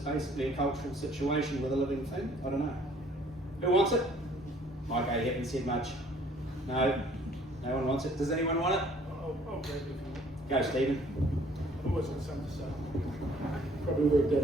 a cultural situation with a living thing? I don't know. Who wants it? Mike, you haven't said much. No. No one wants it. Does anyone want it? I'll grab it if you want. Go, Stephen. I've always got something to say. Probably work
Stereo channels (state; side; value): normal; both; correlation 0.58